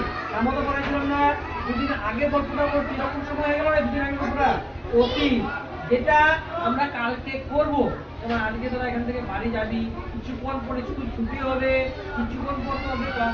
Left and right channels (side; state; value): both; identical; correlation 1.00